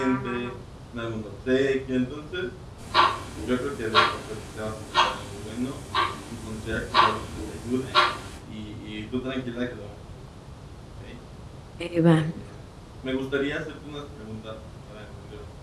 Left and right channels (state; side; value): identical; both; correlation 1.00